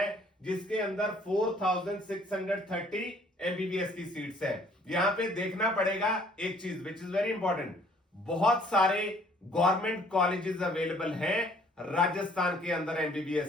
जिसके अंदर 4630 एमबीबीएस की सीट्स है। यहां पे देखना पड़ेगा एक चीज विच इज वेरी इंपॉर्टेंट, बहुत सारे गवर्नमेंट कॉलेजेस अवेलेबल हैं राजस्थान के अंदर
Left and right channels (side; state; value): both; normal; correlation 0.59